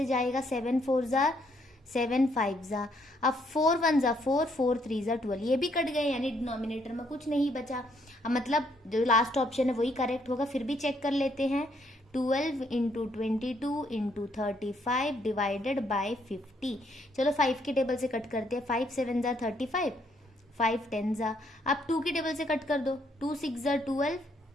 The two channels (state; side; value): normal; both; correlation 0.71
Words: जाएगा, 7 4 ज़ा 7 5 जा, अब 4 1 जा 4, 4 3 जा 12, ये भी कट गए यानी डिनोमिनेटर में कुछ नहीं बचा। अब मतलब जो लास्ट ऑप्शन है वही करेक्ट होगा। फिर भी चेक कर लेते हैं, 12 इंटू 22 इंटू 35 डिवाइडेड बाई 50। चलो 5 के टेबल से कट करते हैं, 5 7 जा 35, 5 10 जा, अब 2 की टेबल से कट कर दो, 2 6 जा 12,